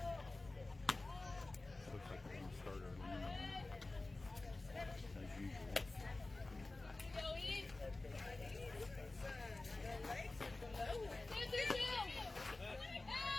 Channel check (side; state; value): right; quieter; 3.1 dB